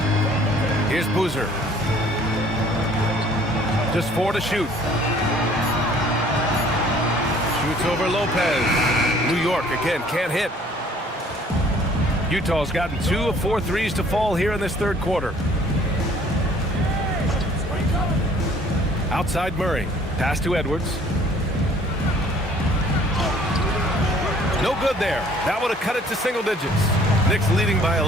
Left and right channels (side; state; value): both; normal; correlation 0.56